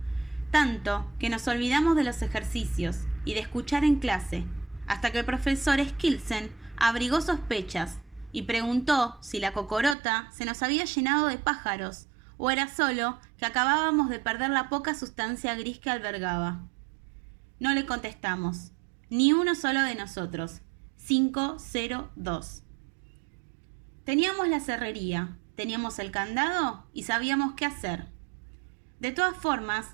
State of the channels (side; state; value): left; drops out; at 10.0 s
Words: tanto que nos olvidamos de los ejercicios y de escuchar en clase, hasta que el profesor Skilsen abrigó sospechas y preguntó si la cocorota se nos había llenado de pájaros o era solo que acabábamos de perder la poca sustancia gris que albergaba. No le contestamos, ni uno solo de nosotros. 502. Teníamos la serrería, teníamos el candado y sabíamos qué hacer. De todas